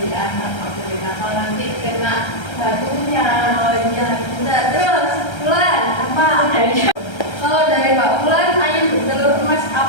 anak aku nakal nanti kena batunya. Oh iya, bentar. Terus, Bulan, apa? Kalau dari Mbak Bulan, ayam bertelur emas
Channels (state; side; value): late; right; 1.3 ms